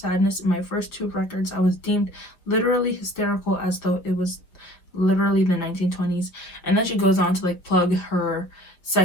in my first two records, I was deemed literally hysterical as though it was literally the 1920s. And then she goes on to plug her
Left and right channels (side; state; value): right; late; 5.7 ms